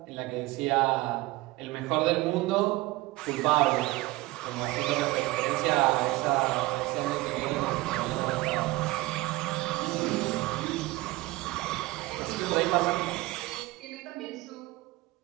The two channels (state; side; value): quieter; left; 20.0 dB